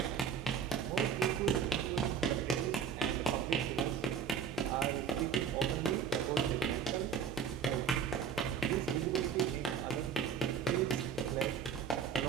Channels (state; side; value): quieter; left; 6.8 dB